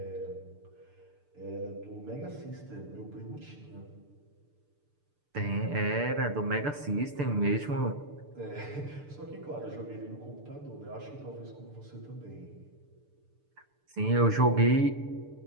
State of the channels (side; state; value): left; late; 6.8 ms